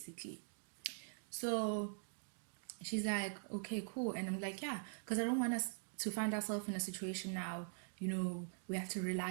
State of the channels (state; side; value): silent; left; digital silence